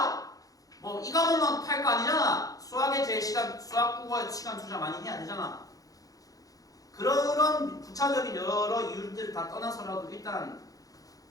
뭐 이 과목만 팔 거 아니잖아. 수학 국어에 시간 투자 많이 해야 되잖아. 그런 부차적인 여러 이유들을 다 떠나서라도 일단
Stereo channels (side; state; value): right; late; 0.17 ms